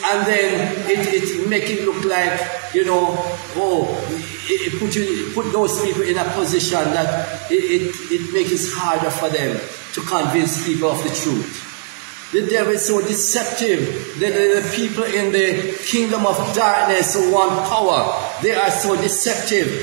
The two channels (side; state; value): left; silent; digital silence